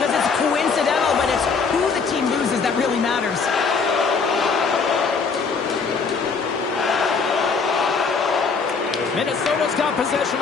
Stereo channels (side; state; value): right; quieter; 5.1 dB